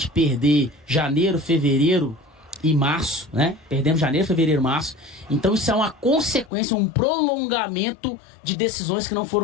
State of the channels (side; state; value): right; drops out; at 6.5 s